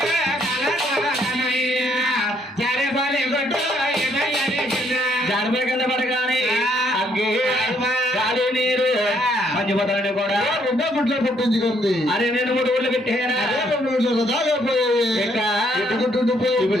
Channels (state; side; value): normal; both; correlation 0.69